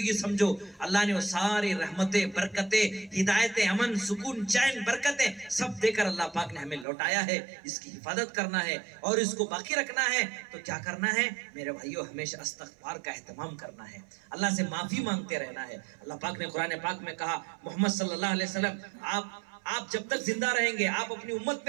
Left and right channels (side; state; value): left; drops out; at 6.9 s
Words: سمجھو۔ اللہ نے وہ ساری رحمتیں، برکتیں، ہدایتیں، امن، سکون، چین، برکتیں سب دے کر اللہ پاک نے ہمیں لوٹایا ہے۔ اس کی حفاظت کرنا ہے اور اس کو باقی رکھنا ہے تو کیا کرنا ہے میرے بھائیوں؟ ہمیشہ استغفار کا اہتمام کرنا ہے، اللہ سے معافی مانگتے رہنا ہے۔ اللہ پاک نے قرآن پاک میں کہا، محمد صلی اللہ علیہ وسلم، آپ جب تک زندہ رہیں گے، آپ اپنی امت